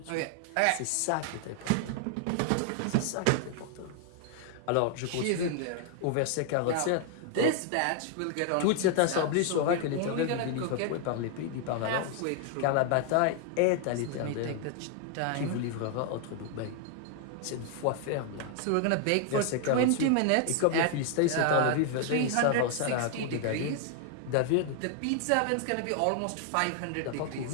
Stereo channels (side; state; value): both; different; correlation 0.00